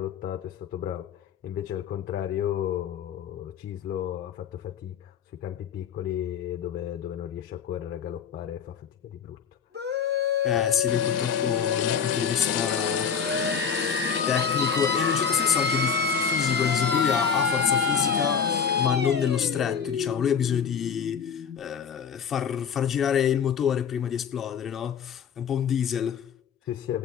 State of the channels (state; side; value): quieter; right; 7.0 dB